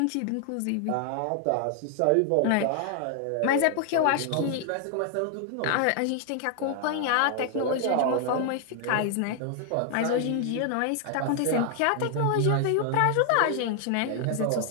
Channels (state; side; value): different; both; correlation 0.00